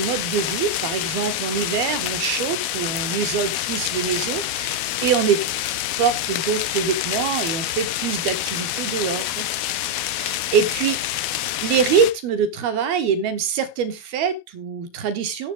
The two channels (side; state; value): left; late; 12 ms